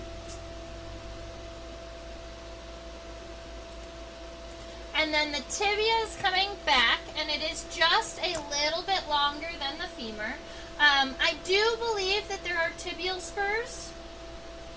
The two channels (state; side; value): identical; both; correlation 1.00